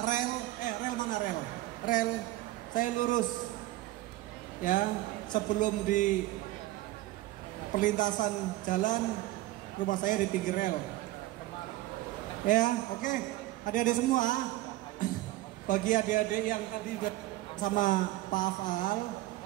rel mana rel? Rel saya lurus. Ya, sebelum di perlintasan jalan, rumah saya di pinggir rel. Ya, oke. Adik-adik semua, bagi adik-adik yang tadi sama Pak Afal,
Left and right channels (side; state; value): left; quieter; 16.9 dB